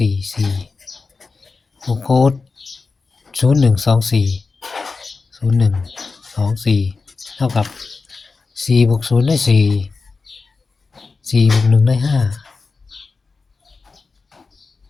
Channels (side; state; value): right; quieter; 4.3 dB